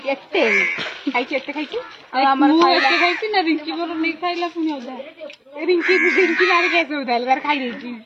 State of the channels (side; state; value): both; identical; correlation 1.00